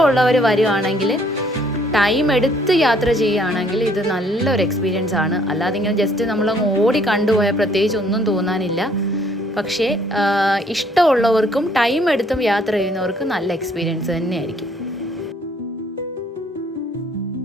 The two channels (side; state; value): both; normal; correlation 0.63